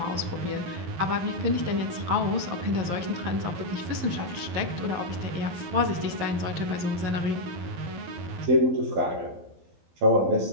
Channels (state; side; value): late; left; 12 ms